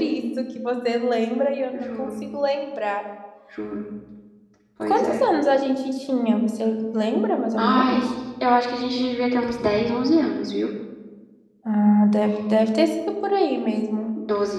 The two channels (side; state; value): both; identical; correlation 1.00